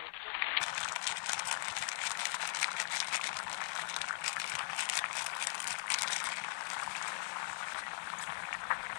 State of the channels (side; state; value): right; silent; 51 dB below the other